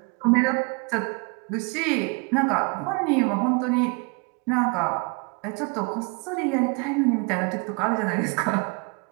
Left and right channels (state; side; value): quieter; left; 32.4 dB